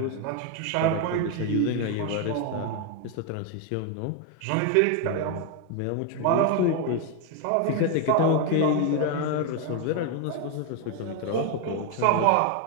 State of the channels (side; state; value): both; different; correlation 0.01